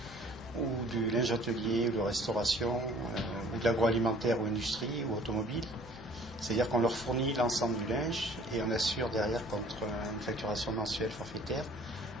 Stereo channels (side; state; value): both; normal; correlation 0.53